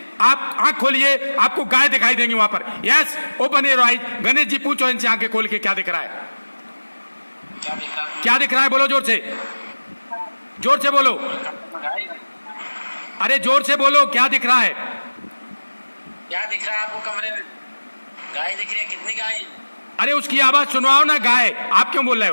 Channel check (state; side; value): inverted; both; correlation -1.00